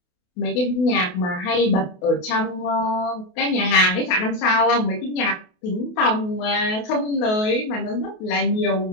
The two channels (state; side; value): late; right; 28 ms